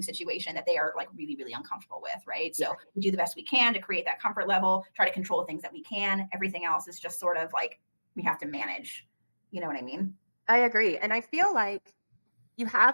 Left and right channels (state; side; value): inverted; both; correlation -1.00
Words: situation that they are like really, really uncomfortable with, right? So we do the best we can to create that comfort level, try to control things that we can. Everything else is just sort of like we have to manage. You know what I mean? I agree. And I feel like you